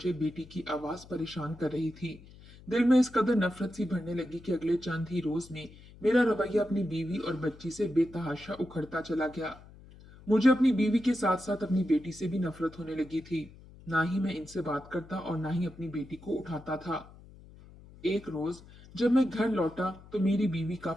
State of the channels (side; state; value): left; noise; hum, 21 dB below the sound